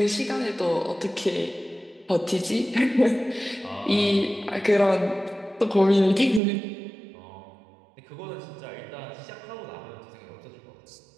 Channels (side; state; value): left; drops out; at 6.4 s